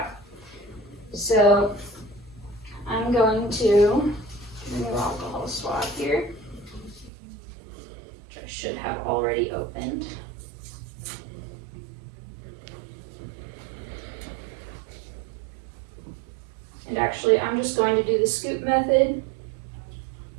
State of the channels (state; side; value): drops out; left; at 7.1 s